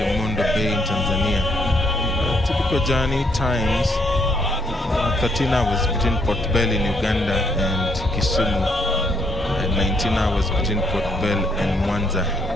Bay in Tanzania. Typical journey times 13 hours between Port Bell in Uganda and Kisumu, and 19 hours between Port Bell and Mwanza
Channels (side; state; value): both; normal; correlation 0.71